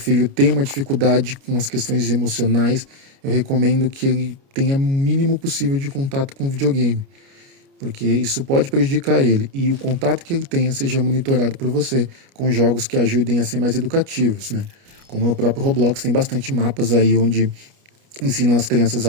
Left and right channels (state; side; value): late; left; 29 ms